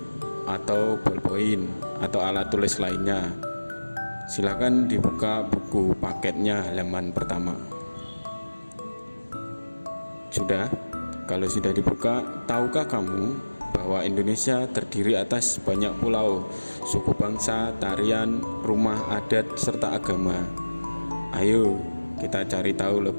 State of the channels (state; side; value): inverted; both; correlation -1.00